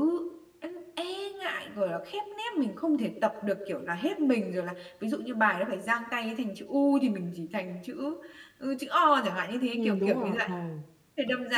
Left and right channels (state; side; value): identical; both; correlation 1.00